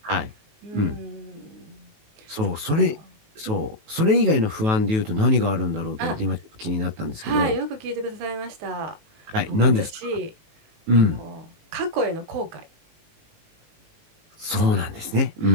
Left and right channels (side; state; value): left; late; 19 ms